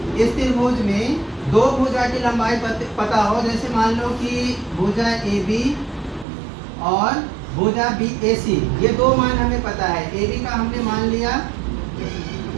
इस त्रिभुज में दो भुजा की लंबाई पता हो, जैसे मान लो कि भुजा AB और भुजा BAC, ये दो मान हमें पता है। AB का हमने मान लिया,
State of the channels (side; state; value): left; drops out; at 6.2 s